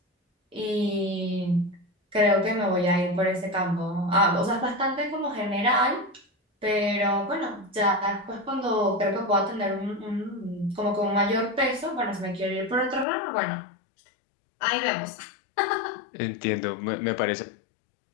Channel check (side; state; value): right; drops out; at 13.1 s